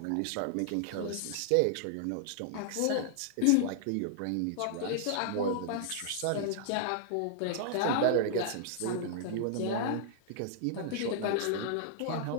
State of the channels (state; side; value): different; both; correlation -0.01